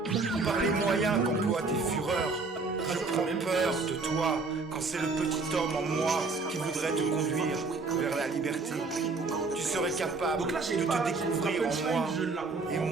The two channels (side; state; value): left; quieter; 3.9 dB